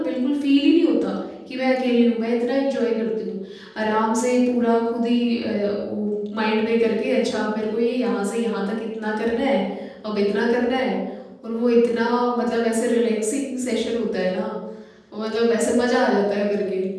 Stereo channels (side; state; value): both; identical; correlation 1.00